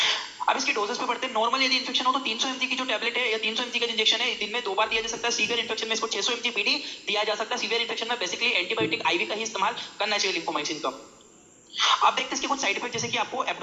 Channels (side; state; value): both; identical; correlation 1.00